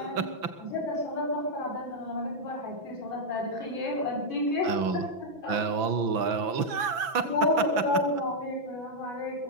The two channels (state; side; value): late; left; 6.0 ms